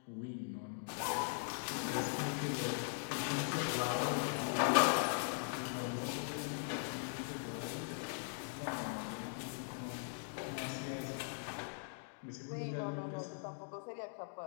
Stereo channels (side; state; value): right; silent; digital silence